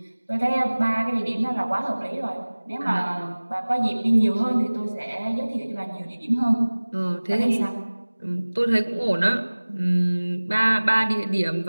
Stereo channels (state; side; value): inverted; both; correlation -1.00